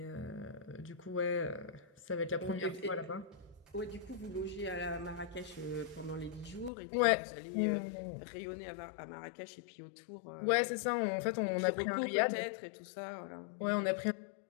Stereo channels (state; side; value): drops out; right; at 6.7 s